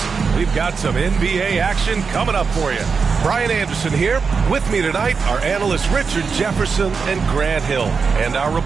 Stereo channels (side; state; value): left; quieter; 5.3 dB